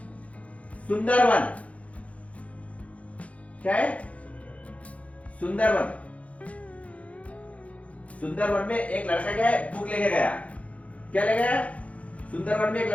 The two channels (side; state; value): right; late; 0.065 ms